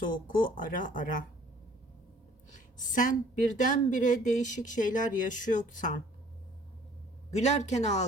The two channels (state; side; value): normal; both; correlation 0.55